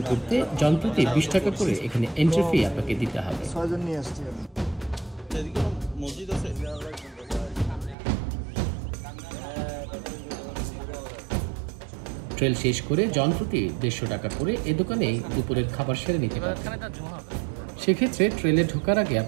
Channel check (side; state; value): left; drops out; at 8.0 s